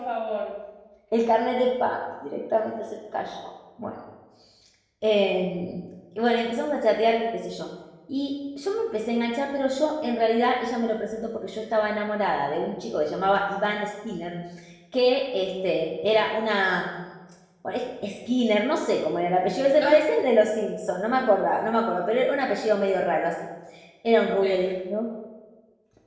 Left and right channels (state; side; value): identical; both; correlation 1.00